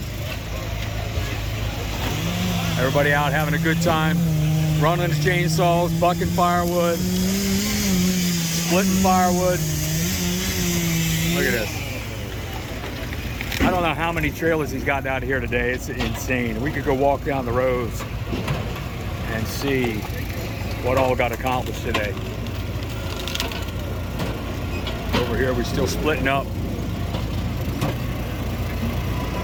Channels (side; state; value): both; identical; correlation 1.00